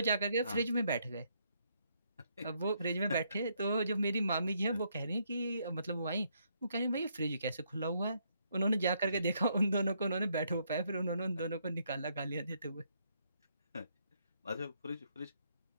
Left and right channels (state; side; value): inverted; both; correlation -0.73